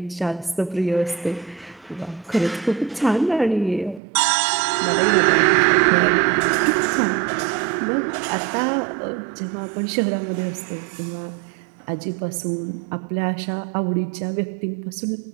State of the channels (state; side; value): drops out; left; at 4.0 s